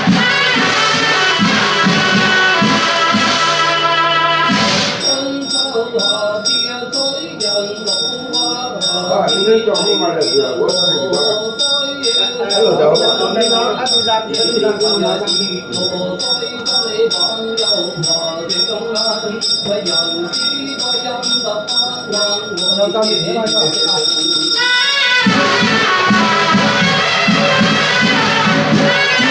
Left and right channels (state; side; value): identical; both; correlation 1.00